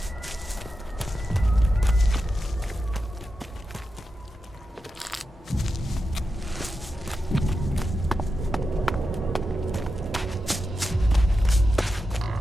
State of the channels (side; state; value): both; normal; correlation 0.89